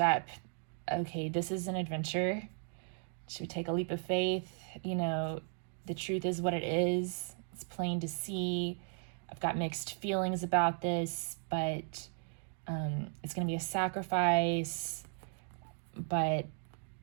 Okay, this is an adventure. Should we take a leap of faith? The truth is what it is. It's plain to see. I've got mixed feelings about this, but it's going to be a sacrifice. But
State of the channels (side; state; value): left; silent; 54 dB below the other